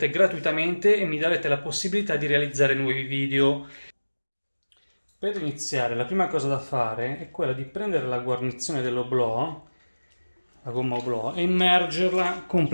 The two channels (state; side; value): inverted; both; correlation -1.00